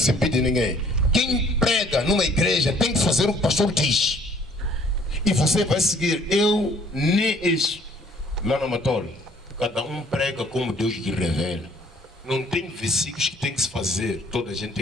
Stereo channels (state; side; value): normal; both; correlation 0.59